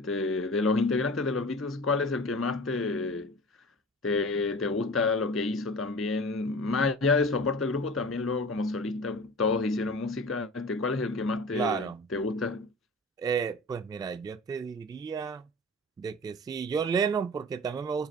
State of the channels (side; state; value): both; normal; correlation 0.37